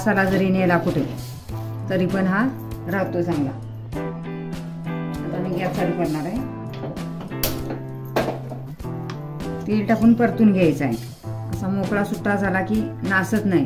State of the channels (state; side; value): identical; both; correlation 1.00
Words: जरी नेला कुठे, तरी पण हा राहतो चांगला. आता मी गॅस चालू करणार आहे. तेल टाकून परतून घ्यायचं आहे. असा मोकळा सुट्टा झाला की नासत